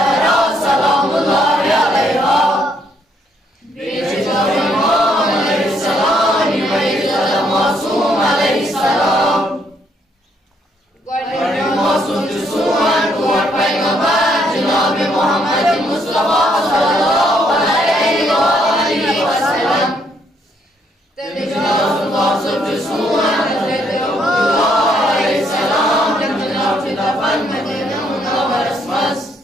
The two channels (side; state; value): both; normal; correlation 0.71